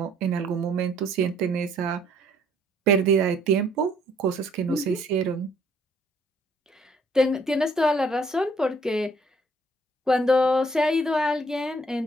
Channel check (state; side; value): normal; both; correlation 0.63